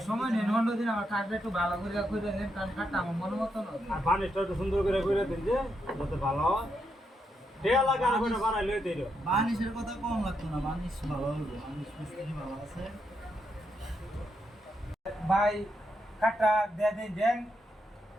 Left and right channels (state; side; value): normal; both; correlation 0.81